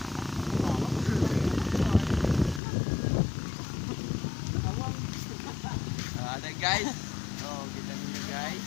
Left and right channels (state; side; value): drops out; right; at 2.6 s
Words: Ada guys. Oh, kita niyo guys.